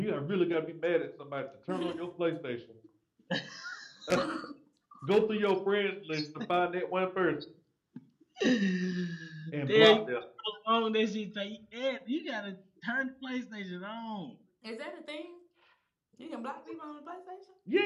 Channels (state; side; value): identical; both; correlation 1.00